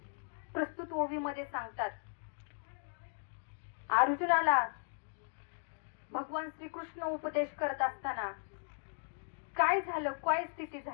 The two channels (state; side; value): silent; right; digital silence